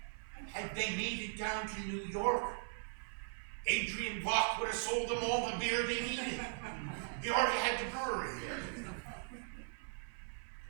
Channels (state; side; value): silent; left; 52 dB below the other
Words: Had they made it down to New York, Adrian Block would have sold them all the beer they needed. He already had the brewery there.